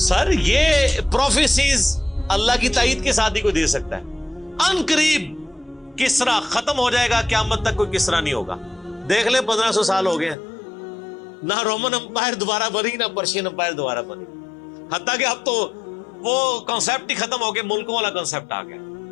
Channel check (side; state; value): right; drops out; at 10.4 s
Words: سر، یہ پروفیسیز اللہ کی تائید کے ساتھ ہی کوئی دے سکتا ہے. ان قریب کسرا ختم ہو جائے گا، قیامت تک کوئی کسرا نہیں ہوگا. دیکھ لیں 1500 سال ہو گئے ہیں، نہ رومن امپائر دوبارہ بنی، نہ پرشین امپائر دوبارہ بنی. حتیٰ کہ اب تو وہ کانسیپٹ ہی ختم ہو گیا، ملکوں والا کانسیپٹ آ گیا.